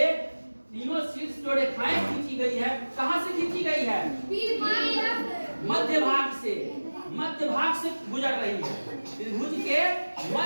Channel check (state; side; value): inverted; both; correlation -1.00